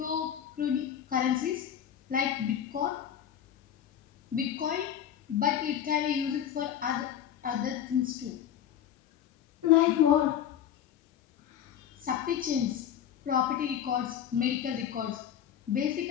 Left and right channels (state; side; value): quieter; right; 9.8 dB